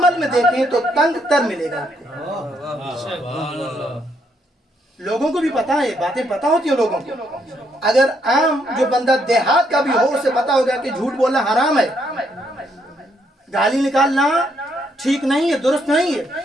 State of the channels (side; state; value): both; normal; correlation 0.74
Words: میں دیکھیں تو تنگ تر ملے گا آپ کو۔ لوگوں کو بھی پتا ہے، باتیں پتا ہوتی ہیں لوگوں کو۔ اگر عام جو بندہ دیہات کا بھی ہو، اسے پتا ہوگا کہ جھوٹ بولنا حرام ہے، گالی نکالنا ٹھیک نہیں ہے، درست نہیں ہے۔